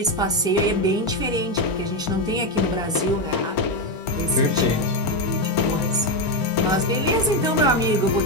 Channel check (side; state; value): both; normal; correlation 0.08